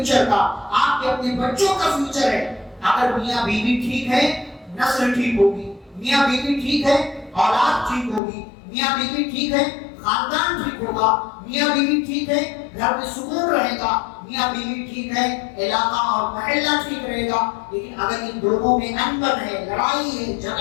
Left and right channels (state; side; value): drops out; right; at 8.2 s